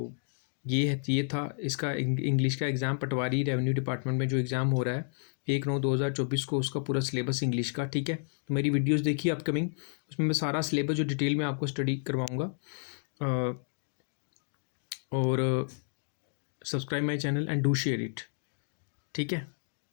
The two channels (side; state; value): right; silent; digital silence